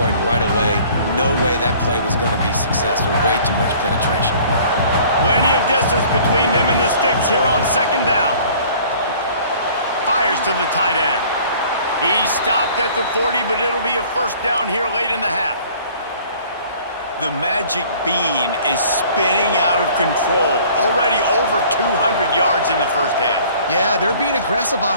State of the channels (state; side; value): inverted; both; correlation -0.52